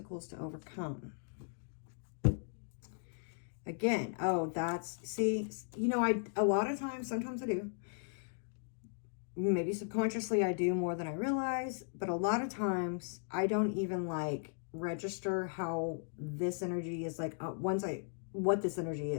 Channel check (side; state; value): right; silent; digital silence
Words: to overcome. Again, oh, that's, see, you know, a lot of times, sometimes I do. Maybe subconsciously I do more than I realize, but a lot of times I don't even like register how this energy is like, what this energy